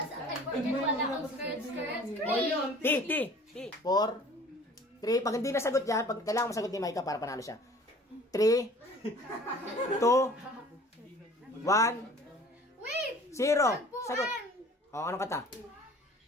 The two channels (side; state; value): both; normal; correlation 0.48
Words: sa akin, forget wala akong skirt. T. 4, 3. Pag hindi nasagot yan, pag kailangan masagot ni Micah para panalo siya. 3, 2, 1, Wait! 0. Sagot. O, anong kanta?